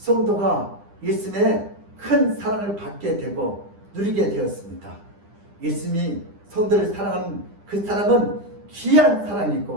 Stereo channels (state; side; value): late; left; 9.9 ms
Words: 예수님의 큰 사랑을 받게 되고 누리게 되었습니다. 예수님이 성도를 사랑하는 그 사랑은 귀한